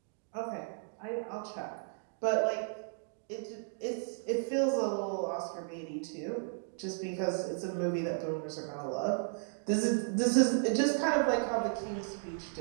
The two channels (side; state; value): left; silent; 55 dB below the other